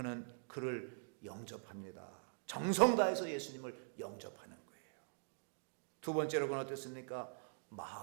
그를 영접합니다. 정성 다해서 예수님을 영접하는 거예요. 두 번째로 그는 어땠습니까?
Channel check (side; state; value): left; silent; digital silence